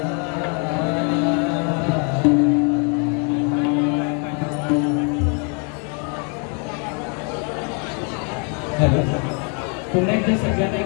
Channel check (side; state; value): right; quieter; 38.0 dB